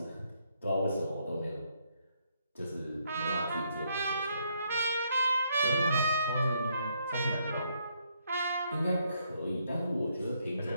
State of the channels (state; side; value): inverted; both; correlation -0.73